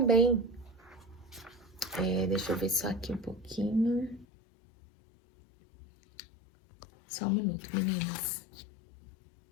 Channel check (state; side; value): drops out; right; at 4.2 s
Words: deixa eu ver só aqui um pouquinho. Só um minuto, meninas.